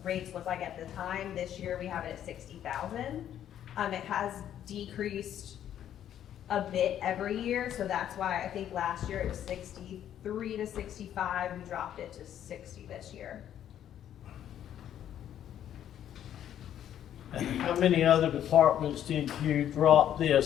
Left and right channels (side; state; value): right; quieter; 10.6 dB